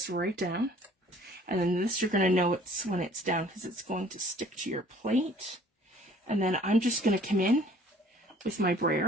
right down. And then this, you're going to know it's when it's down because it's going to stick to your plate. And then I'm just going to come in with my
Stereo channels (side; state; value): both; normal; correlation 0.54